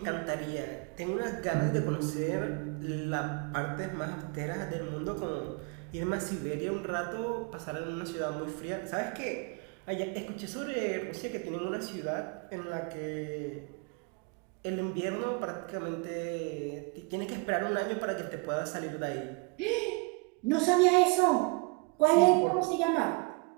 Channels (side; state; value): left; quieter; 31.3 dB